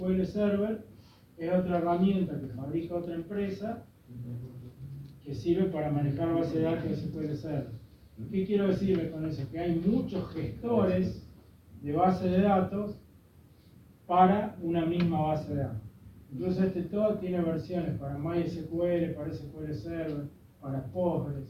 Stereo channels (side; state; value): both; identical; correlation 1.00